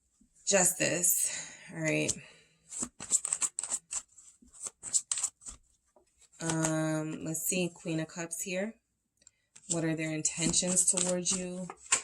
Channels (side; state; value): both; identical; correlation 1.00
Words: justice. All right. Let's see. Queen of Cups here. What are their intentions towards you?